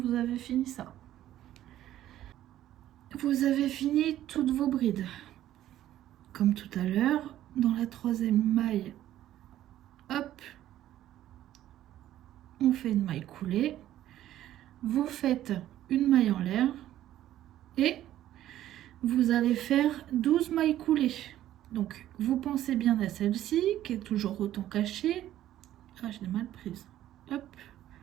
avez fini ça. Vous avez fini toutes vos brides. Comme tout à l'heure, dans la troisième maille, hop, on fait une maille coulée. vous faites une maille en l'air et vous allez faire 12 mailles coulées. Donc vous pensez bien à celle-ci qui est toujours autant cachée. Ah, je l'ai mal prise. Hop.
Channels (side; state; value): left; quieter; 12.9 dB